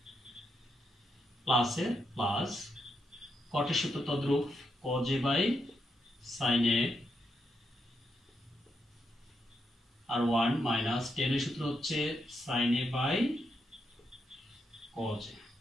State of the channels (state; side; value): normal; both; correlation 0.82